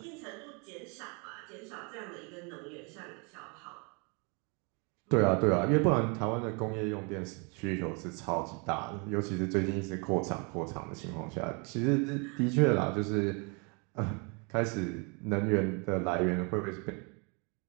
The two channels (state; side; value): quieter; left; 32.9 dB